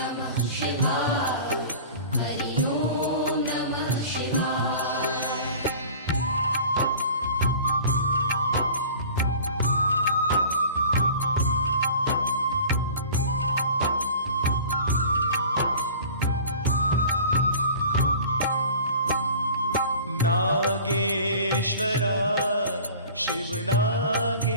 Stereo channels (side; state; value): both; inverted; correlation -0.42